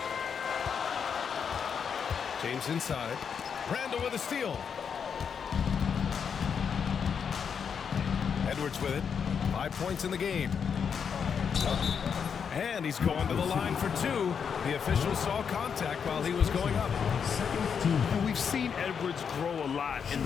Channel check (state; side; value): quieter; right; 6.9 dB